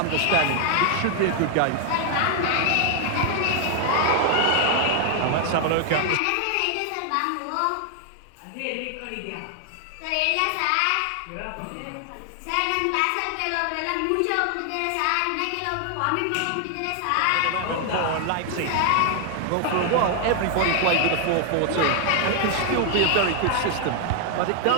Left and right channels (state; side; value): different; both; correlation 0.00